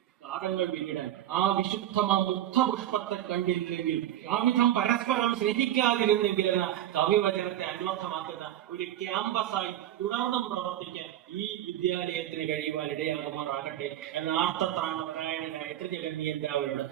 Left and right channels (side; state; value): left; quieter; 12.4 dB